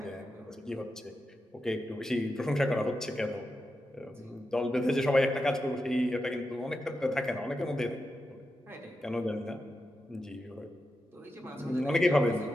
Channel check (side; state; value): both; normal; correlation 0.89